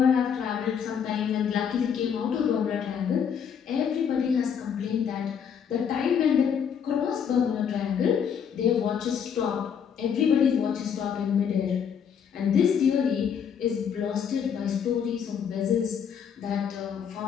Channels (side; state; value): right; quieter; 7.5 dB